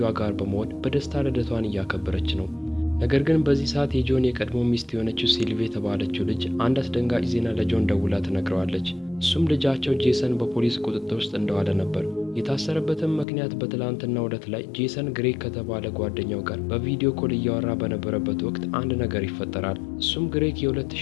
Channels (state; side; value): drops out; right; at 13.2 s